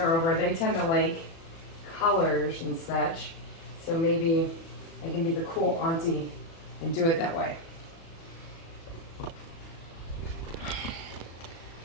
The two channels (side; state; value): right; late; 36 ms